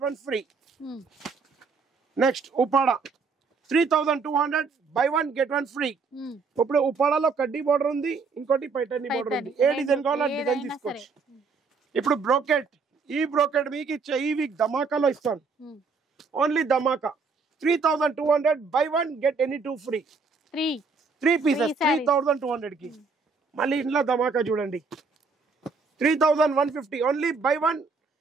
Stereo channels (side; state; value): left; quieter; 4.7 dB